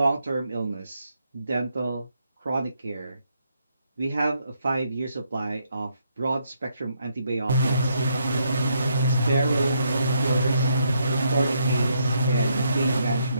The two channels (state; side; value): inverted; both; correlation -0.75